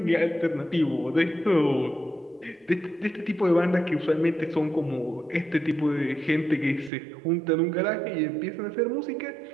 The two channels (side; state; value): left; drops out; at 6.9 s